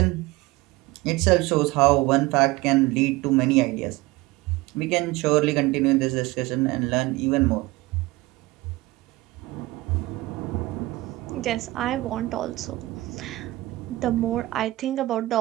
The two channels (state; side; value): quieter; left; 19.5 dB